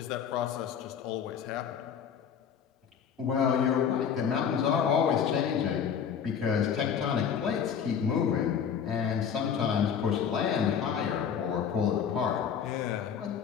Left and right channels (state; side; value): quieter; right; 7.6 dB